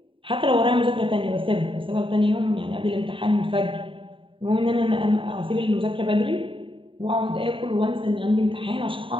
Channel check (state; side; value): late; left; 0.25 ms